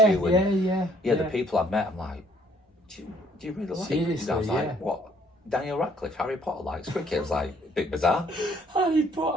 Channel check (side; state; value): both; normal; correlation 0.63